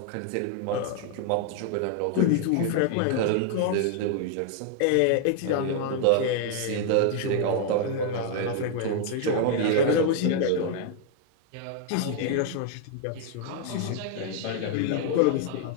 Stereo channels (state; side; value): different; both; correlation 0.00